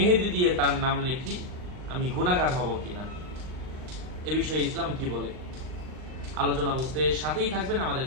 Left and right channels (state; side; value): late; left; 39 ms